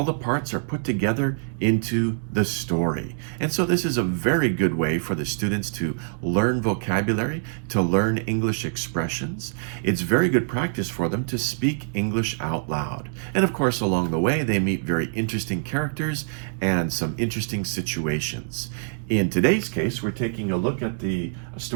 the parts are put together into the story. And so this is a very good way for the students to learn vocabulary, to learn English expressions. It's very good practice for them to speak English out loud. And of course, along the way, they meet very interesting characters and some interesting situations. In today's case, we're taking a look at the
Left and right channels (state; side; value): silent; left; digital silence